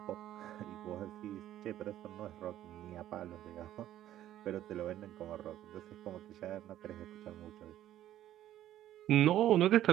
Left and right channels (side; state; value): left; quieter; 12.7 dB